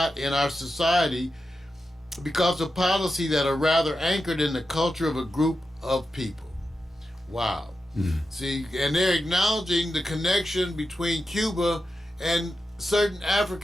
in our society because of policy that are rather anchored in the culture of a group of people." Wow. See, and they're acknowledging the connection between Cuba and certain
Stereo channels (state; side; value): normal; both; correlation 0.90